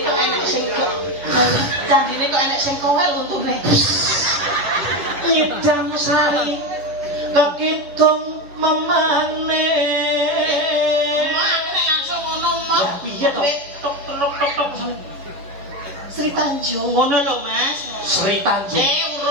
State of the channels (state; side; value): late; left; 10 ms